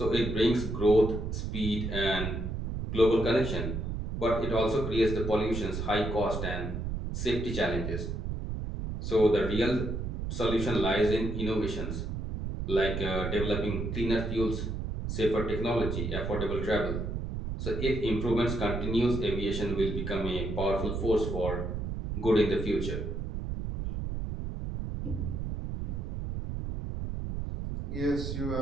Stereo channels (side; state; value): right; noise; rumble, 4 dB below the sound